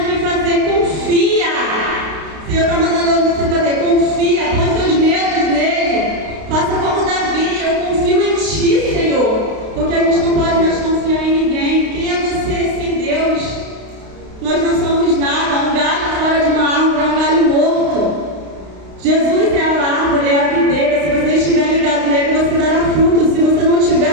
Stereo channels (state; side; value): late; left; 32 ms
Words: que fazer, confia. O Senhor está mandando você fazer, confia. Põe seus medos nele. Faça como Davi, eu confio em ti, Senhor. Porque a gente não pode mais confiar em ninguém. Quem é você sem Deus? Nós não somos nada. Um galho fora de uma árvore é um galho morto. Jesus é a árvore, é a videira. Se você estiver ligado nele, você dará fruto. Se você não tiver,